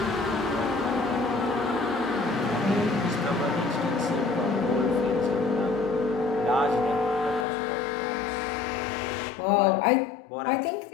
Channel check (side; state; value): right; drops out; at 7.5 s